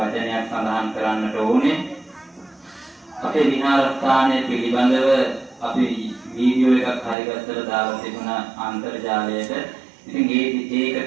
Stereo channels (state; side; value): drops out; left; at 7.2 s